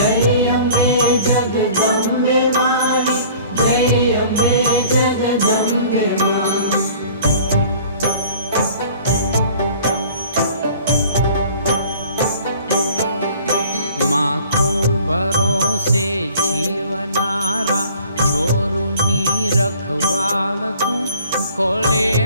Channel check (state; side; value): inverted; both; correlation -0.49